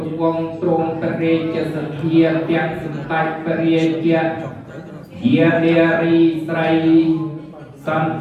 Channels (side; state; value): both; identical; correlation 1.00